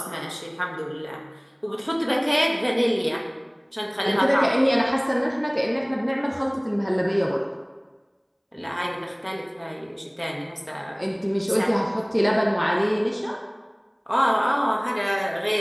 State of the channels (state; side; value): identical; both; correlation 1.00